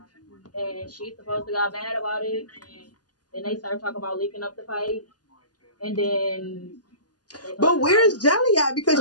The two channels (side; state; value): right; late; 0.69 ms